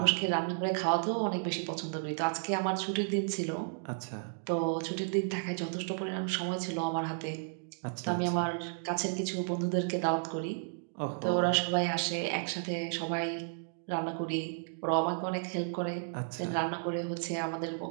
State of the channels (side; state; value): left; silent; digital silence